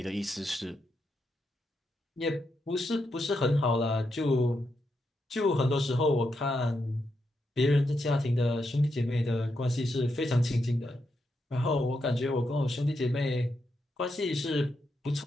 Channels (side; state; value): both; normal; correlation 0.83